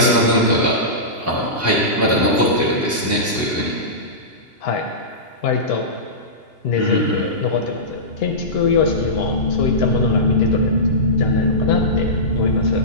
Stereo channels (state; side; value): late; right; 2.8 ms